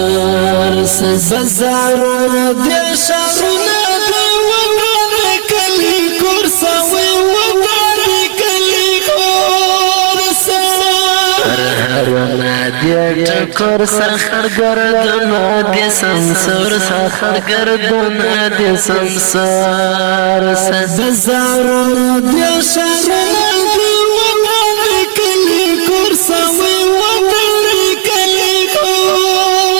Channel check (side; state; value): left; silent; 70 dB below the other